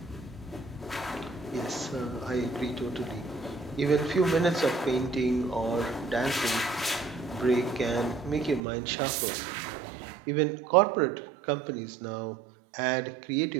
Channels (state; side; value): drops out; left; at 8.6 s